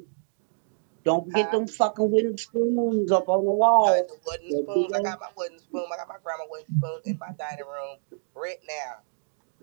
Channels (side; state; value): left; silent; digital silence